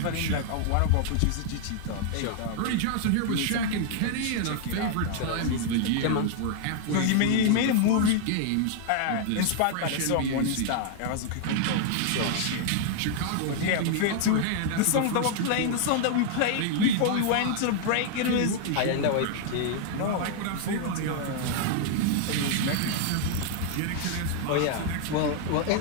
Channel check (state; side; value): different; both; correlation 0.00